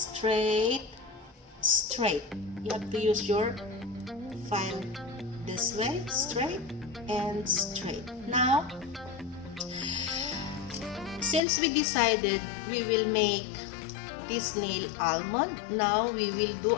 straight. You have to use your file this way, straight and straight. Now, since we decided we will make this nail almond, now we will do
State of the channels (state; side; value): drops out; right; at 11.4 s